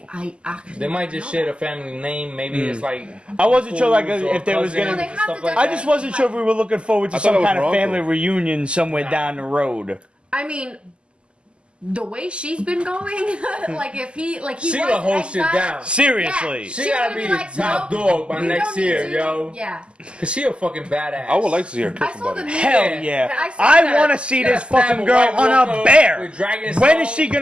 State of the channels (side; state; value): left; late; 0.052 ms